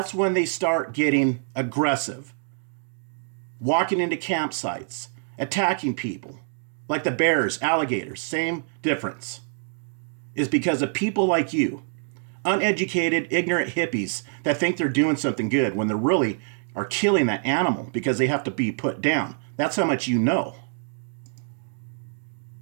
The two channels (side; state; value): left; silent; digital silence